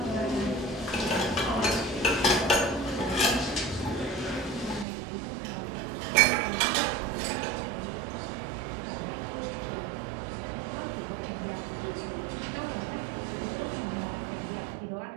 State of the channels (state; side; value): drops out; left; at 4.9 s